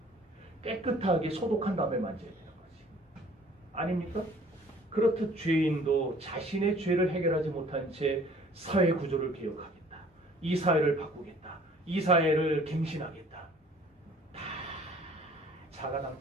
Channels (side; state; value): both; normal; correlation 0.53